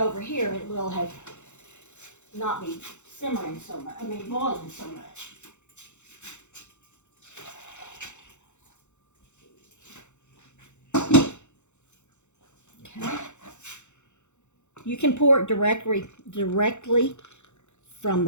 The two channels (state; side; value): late; right; 0.83 ms